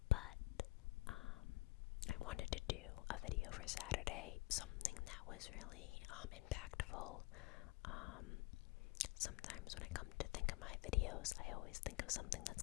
But I wanted to do a video for Saturday, something that was really impactful. Sometimes when I come to think of my videos, I always think of something that's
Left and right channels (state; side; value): quieter; right; 20.7 dB